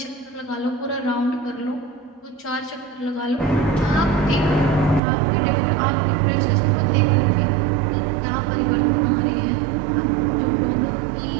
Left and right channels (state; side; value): drops out; left; at 5.0 s